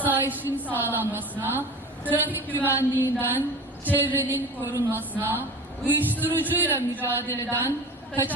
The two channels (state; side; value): normal; both; correlation 0.35